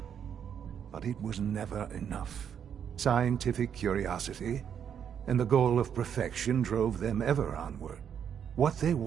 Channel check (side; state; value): left; quieter; 8.2 dB